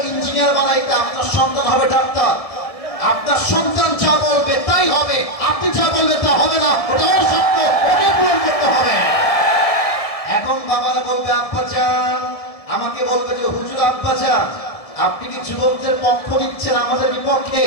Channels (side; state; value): right; late; 1.7 ms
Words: বানাইতে, আপনার সন্তান হবে ডাক্তার। আপনার সন্তান যা বলবে তাই হবে, আপনি যা বলবেন তা হবে না, ওটা অসত্য, ওকে পূরণ করতে হবে। এখন বাবারা বলবে আব্বা জান, আমাকে বলবে যে হুজুর আব্বা জান, আপনি কি যুবকদের পক্ষ নিচ্ছেন আমাদের বিপক্ষে?